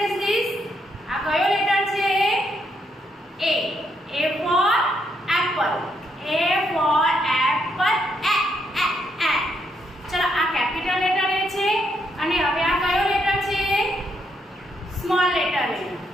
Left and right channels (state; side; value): normal; both; correlation 0.76